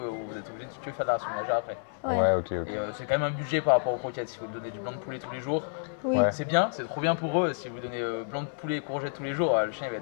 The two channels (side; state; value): right; silent; digital silence